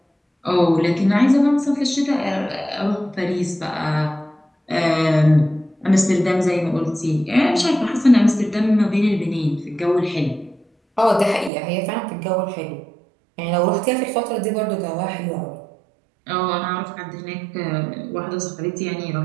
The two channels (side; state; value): left; drops out; at 11.5 s